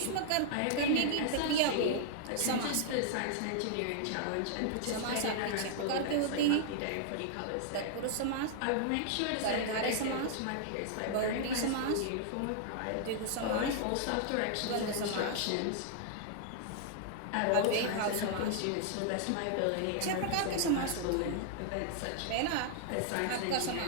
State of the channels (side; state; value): both; different; correlation -0.01